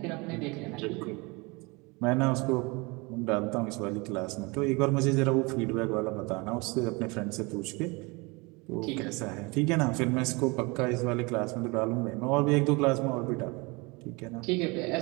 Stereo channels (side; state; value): left; quieter; 26.7 dB